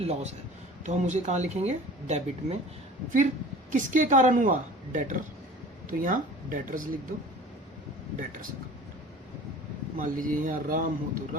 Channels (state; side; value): normal; both; correlation 0.42